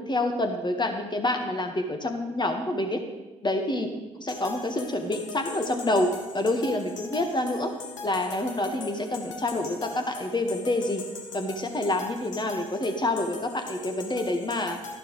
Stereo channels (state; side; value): normal; both; correlation 0.59